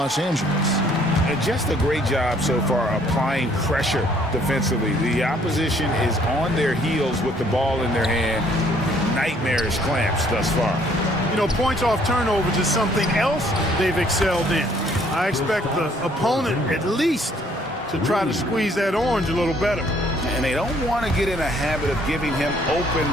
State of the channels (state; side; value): normal; both; correlation 0.63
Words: Angeles. And just a great job so far applying pressure defensively. The opposition is on their heels with the ball in their hand. Nightmarish clamps thus far. You know, points off turnovers is something else they've excelled in. I expect the opponent at least to try to squeeze that orange a little better. and they don't want to get in a habit of giving him